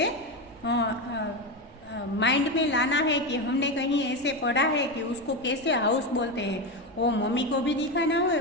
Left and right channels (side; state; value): both; normal; correlation 0.15